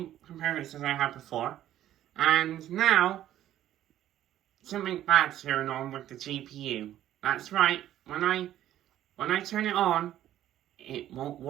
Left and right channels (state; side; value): quieter; left; 12.4 dB